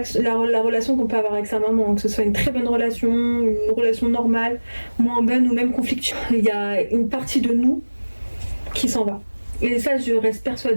qu'on peut avoir avec sa maman, que ce soit une très bonne relation, une relation normale, moins bonne ou même conflictuelle, il y a une partie de nous qui s'en va. Et ça, je reste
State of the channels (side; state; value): both; inverted; correlation -1.00